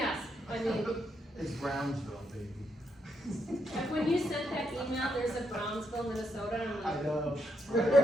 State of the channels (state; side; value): normal; both; correlation 0.78